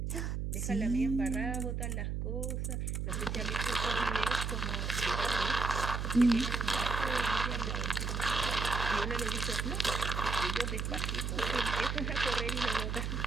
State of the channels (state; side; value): noise; right; hum, 2 dB below the sound